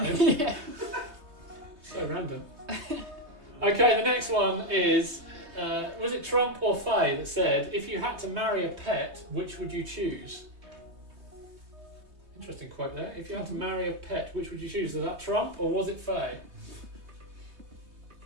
in. Yeah. So random. Okay, the next one is, was it Trump or Faye that said, if you had to marry a pet, which would you choose? Interesting quote there. If you had to marry a pet, which would you choose? Was that Trump or was it Faye?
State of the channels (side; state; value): left; late; 3.3 ms